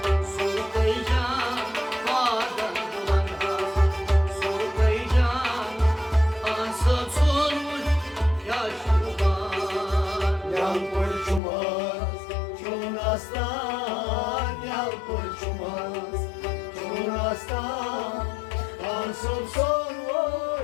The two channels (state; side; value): drops out; right; at 11.4 s